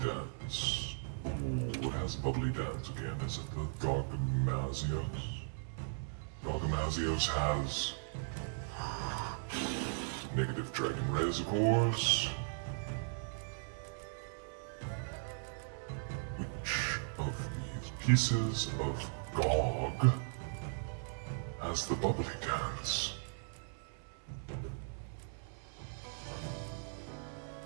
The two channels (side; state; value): left; silent; 53 dB below the other